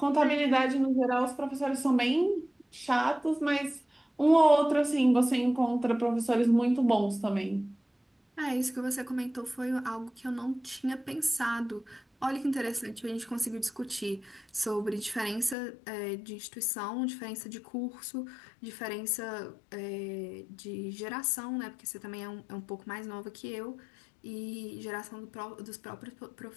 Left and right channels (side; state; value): right; drops out; at 15.6 s